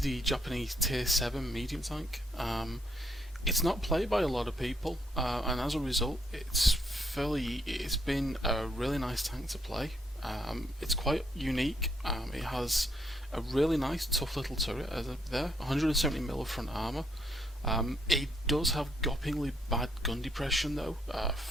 the Japanese Tier 7 medium tank. It's not played by a lot of people, and as a result it's been a really nice tank to play. It's quite unique. It has a really nice tough little turret there, 170mm of front armour. It does have gopingly bad gun depression though,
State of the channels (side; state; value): both; normal; correlation 0.73